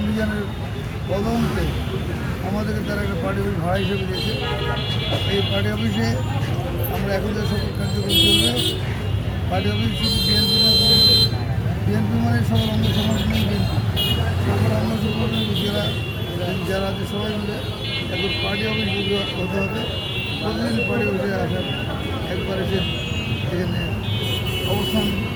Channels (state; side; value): identical; both; correlation 1.00